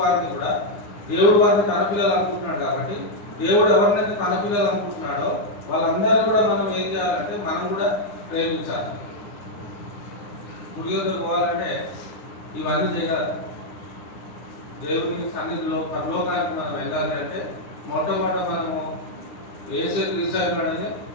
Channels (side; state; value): right; late; 9.8 ms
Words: కూడా దేవుడు వారిని తన పిల్లలు అనుకుంటున్నాడు. కాబట్టి దేవుడు ఎవరినైతే తన పిల్లలు అనుకుంటున్నాడో వాళ్ళందరూ కూడా మనం ఏం చేయాలంటే మనం కూడా ప్రేమించాలి. గుడిలోకి పోవాలంటే ఇవన్నీ చేయాలి. దేవుని సన్నిధిలో పరలోకానికి మనం వెళ్ళాలి అంటే మొట్టమొదట మనము యేసు క్రీస్తు ఉన్నాడని